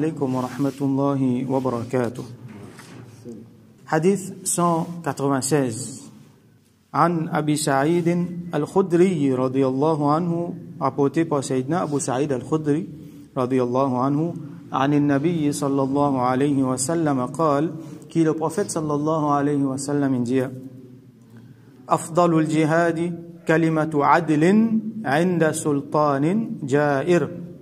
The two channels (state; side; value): identical; both; correlation 1.00